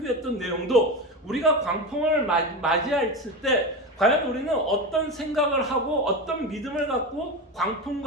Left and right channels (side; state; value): both; normal; correlation 0.21